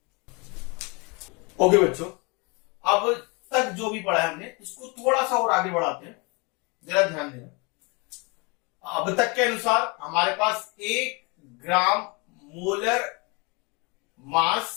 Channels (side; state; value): right; quieter; 29.6 dB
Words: ओके बच्चों, अब तक जो भी पढ़ा है हमने इसको थोड़ा सा और आगे बढ़ाते हैं, जरा ध्यान देना। अब तक के अनुसार हमारे पास 1 ग्राम मोलर